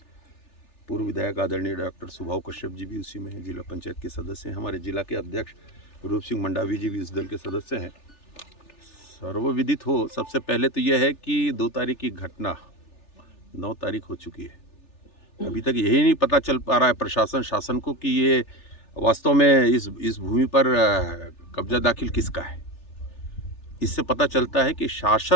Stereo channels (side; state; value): right; late; 3.4 ms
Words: पूर्व विधायक आदरणीय डॉक्टर सुभाव कश्यप जी भी उसी में हैं, जिला पंचायत के सदस्य हैं, हमारे जिला के अध्यक्ष रूप सिंह मंडावी जी भी इस दल के सदस्य हैं। सर्वविदित हो, सबसे पहले तो यह है कि 2 तारीख की घटना 9 तारीख हो चुकी है। अभी तक यही नहीं पता चल पा रहा है प्रशासन शासन को कि ये वास्तव में इस भूमि पर कब्जा दाखिल किसका है। इससे पता चलता है कि